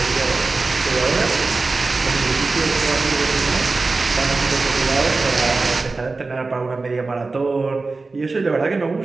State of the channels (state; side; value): quieter; left; 3.8 dB